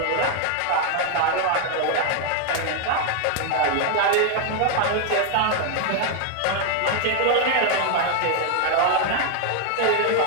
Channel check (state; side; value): different; both; correlation 0.00